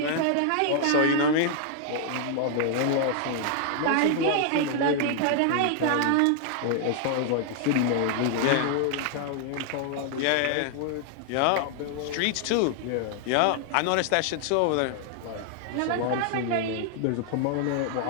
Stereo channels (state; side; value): different; both; correlation 0.00